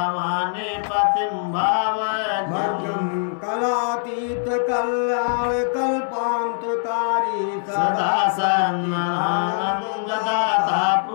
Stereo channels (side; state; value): right; silent; digital silence